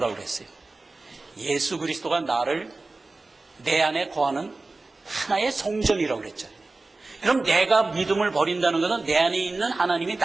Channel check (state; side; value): quieter; left; 3.4 dB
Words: 그랬어요? 예수 그리스도가 나를 내 안에 거하는 하나의 성전이라고 그랬잖아요. 그럼 내가 믿음을 버린다는 것은 내 안에 있는 하나님이